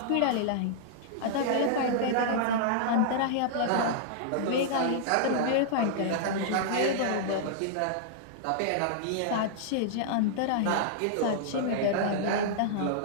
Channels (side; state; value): both; different; correlation -0.01